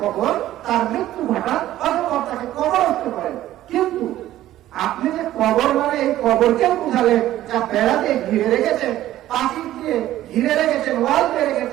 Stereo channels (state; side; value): quieter; left; 13.9 dB